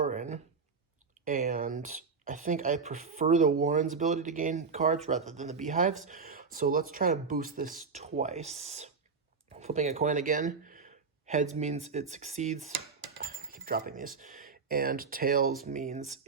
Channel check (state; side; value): quieter; left; 5.0 dB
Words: And I think I prefer the Warren's ability to gain cards rather than the Beehive's. So let's try to boost this twice. Flipping a coin again. Heads means it succeeds. I keep dropping these. And tails means